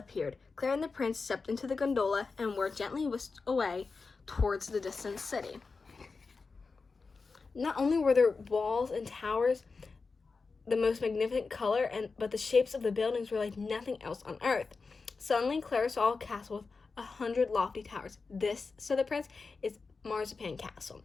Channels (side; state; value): right; quieter; 4.4 dB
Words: Clara and the prince stepped into the gondola and were gently whisked away towards the distant city. Not only were there walls and towers the most magnificent color, but the shapes of the buildings were like nothing else on earth. Suddenly, Clara saw a castle with 100 lofty towers. "This," said the prince, "is Marzipan Castle."